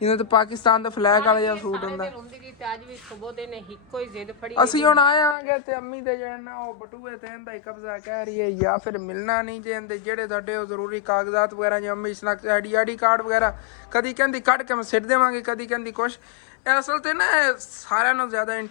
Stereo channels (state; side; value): drops out; right; at 5.4 s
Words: ਜਿਵੇਂ ਤੇ ਪਾਕਿਸਤਾਨ ਦਾ ਫਲੈਗ ਵਾਲਾ ਜਿਹਾ ਸੂਟ ਹੁੰਦਾ। ਅਸੀਂ ਹੁਣ ਆਏ ਆਂਗੇ ਤੇ ਅੰਮੀ ਤੇ ਜਾਣਾ ਉਹ ਬਟੂਏ ਤੇ ਇਹਦਾ ਹੀ ਕਬਜ਼ਾ ਕਹਿ ਰਹੀ ਹੈ, ਜਾਂ ਫਿਰ ਮਿਲਣਾ ਨਹੀਂ ਜੇ ਇਹਦੇ ਜਿਹੜੇ ਤੁਹਾਡੇ ਉਹ ਜ਼ਰੂਰੀ ਕਾਗਜ਼ਾਤ ਵਗੈਰਾ, ਜਿਵੇਂ ਅੰਮੀ ਸ਼ਨਾਖਤ ਆਈਡੀ ਕਾਰਡ ਵਗੈਰਾ, ਕਦੀ ਕਹਿੰਦੀ ਕੱਢ ਕੇ ਮੈਂ ਸਿੱਟ ਦੇਵਾਂਗੇ, ਕਦੀ ਕਹਿੰਦੀ ਕੁਛ। ਅਸਲ ਤੇ ਨਾ ਸਾਰਿਆਂ ਨਾਲੋਂ ਜ਼ਿਆਦਾ